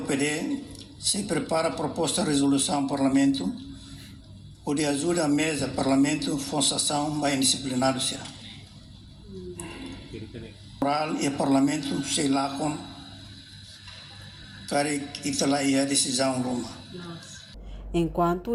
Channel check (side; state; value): both; identical; correlation 1.00